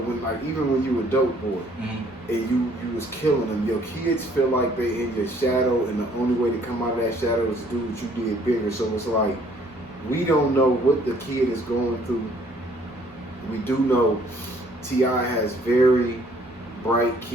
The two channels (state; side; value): normal; both; correlation 0.61